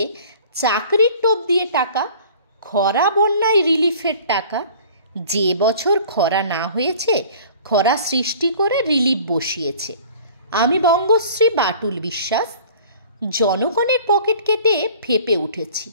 চাকরির টোপ দিয়ে টাকা, খরা বন্যায় রিলিফের টাকা। যে বছর খরা না হয়েছে, খরা সৃষ্টি করে রিলিফ বসিয়েছে। আমি বঙ্গশ্রী বাটুল বিশ্বাস, জনগণের পকেট কেটে ফেপে উঠেছি।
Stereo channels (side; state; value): both; inverted; correlation -0.47